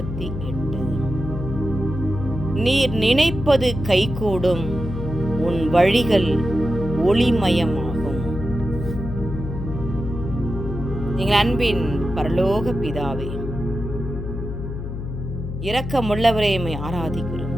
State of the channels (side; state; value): left; noise; hum, 6 dB below the sound